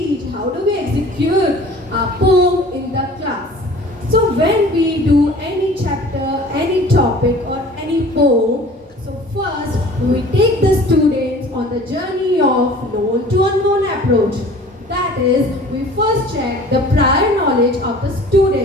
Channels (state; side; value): normal; both; correlation 0.46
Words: how do we execute a poem in the class. So when we do any chapter, any topic or any poem, so first we take the students on the journey of known to unknown approach. That is, we first check the prior knowledge of the